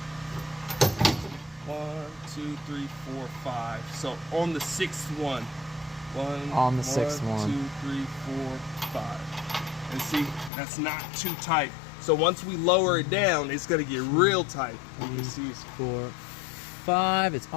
1, 2, 3, 4, 5. So on the sixth one. On the sixth one. 2, 3, 4, 5. And see, that's not too tight. So once we lower it down, it's going to get real tight. You can see it's 4, 5. It's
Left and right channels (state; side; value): drops out; right; at 10.5 s